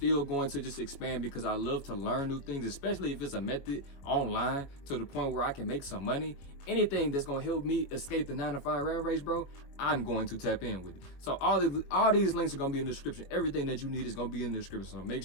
going to just expand because I love to learn new things, especially if it's a method online to the point where I can make some money. Anything that's going to help me escape the 9-to-5 rat race, bro, I'm going to tap in with it. So all these links are going to be in the description. Everything that you need is going to be in the description. So make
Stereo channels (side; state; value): right; late; 21 ms